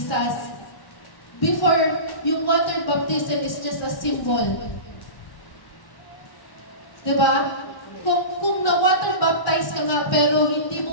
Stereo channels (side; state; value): right; late; 1.1 ms